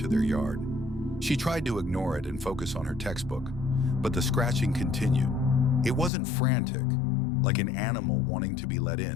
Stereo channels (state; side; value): drops out; right; at 6.1 s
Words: their yard. She tried to ignore it and focus on her textbook, but the scratching continued. It wasn't frantic, like an animal wanting to be let